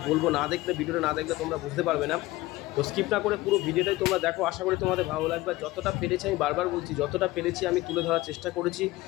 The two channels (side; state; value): right; quieter; 18.7 dB